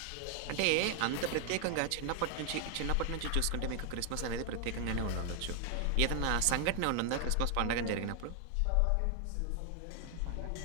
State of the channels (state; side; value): different; both; correlation 0.00